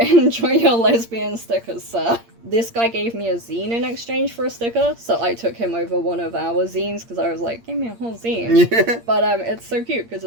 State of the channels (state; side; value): late; left; 8.6 ms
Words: enjoy your lesbian stickers, sir. This guy gave me a zine in exchange for a sticker, so I took him over one of our zines because I was like, give me a whole zine. Yeah. But it's so cute because